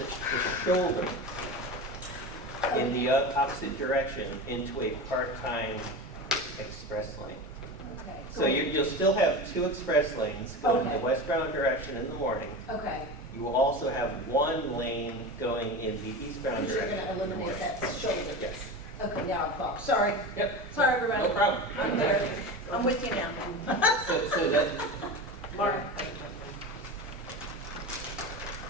shoulder in the opposite direction into a part-time express lane. Okay. So you'll still have 2 express lanes going in Okay. the westbound direction in the morning. Okay. You will also have 1 lane going in the eastbound Because you're direction. going to eliminate that shoulder. Yes. Okay, now I'm following. Sorry. Yep. Sorry, everybody. No problem. I'm there. I'm with you now. So that, Mark?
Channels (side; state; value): both; normal; correlation 0.27